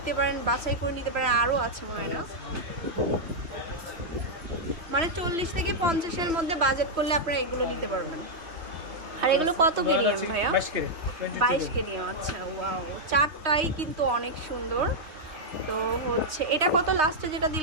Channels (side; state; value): left; late; 3.1 ms